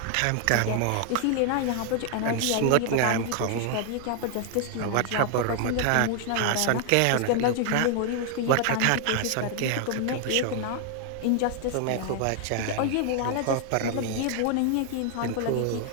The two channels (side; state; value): both; different; correlation 0.00